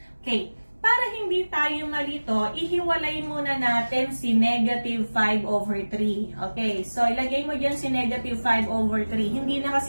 Okay. Para hindi tayo malito, ihiwalay muna natin si negative 5 over 3. Okay, so ilagay mo dyan si negative 5 over 3. Hindi na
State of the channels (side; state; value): both; inverted; correlation -1.00